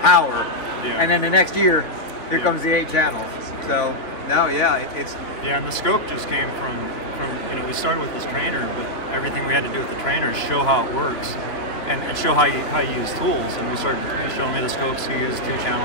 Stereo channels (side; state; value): right; late; 3.6 ms